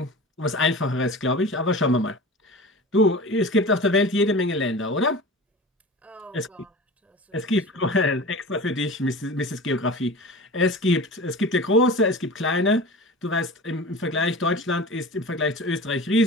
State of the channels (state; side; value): normal; both; correlation 0.34